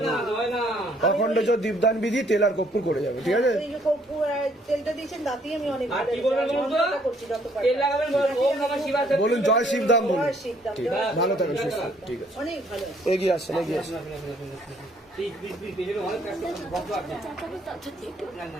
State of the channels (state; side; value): normal; both; correlation 0.64